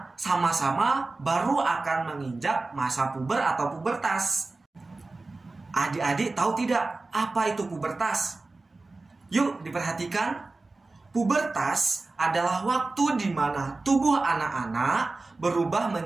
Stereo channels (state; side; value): quieter; left; 3.4 dB